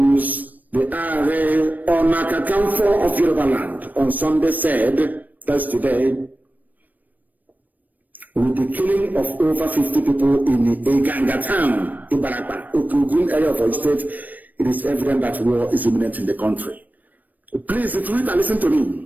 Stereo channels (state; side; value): late; left; 0.084 ms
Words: the Are Onakakamfo of Yoruba land on Sunday said, that's today, with the killing of over 50 people in the Igangan town, Ibarakba, Okugun area of our state, it is evident that war is imminent in the country. Please, Twitter, listen to